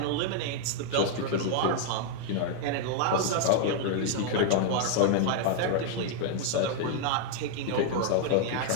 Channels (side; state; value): both; different; correlation 0.00